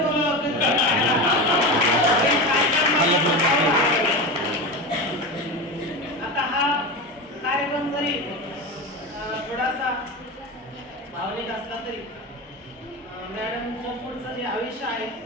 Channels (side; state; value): both; normal; correlation 0.23